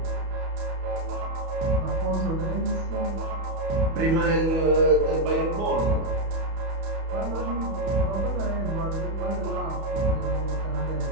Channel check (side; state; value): left; late; 31 ms